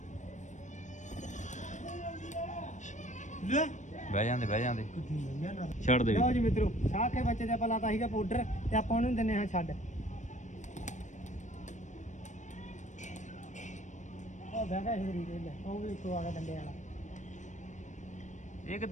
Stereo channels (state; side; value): late; right; 0.35 ms